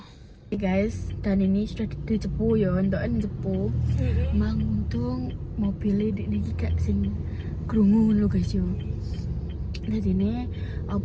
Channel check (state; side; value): identical; both; correlation 1.00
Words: Guys, dan ini sudah di Cepu ya, entokan Cepu. Mang untung mobilnya di iki gak sing krungu lho guys yo. Jadi ini